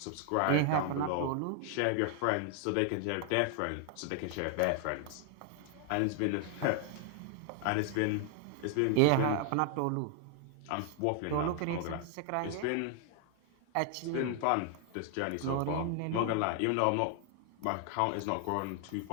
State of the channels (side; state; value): both; different; correlation 0.00